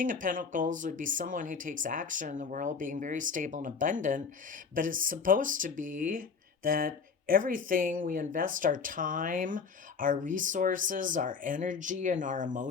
of Pentacles would be someone who takes action in the world, being very stable and abundant, but it's supposed to be that everything we invest our time, our resources, our energy, and our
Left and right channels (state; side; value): quieter; right; 5.5 dB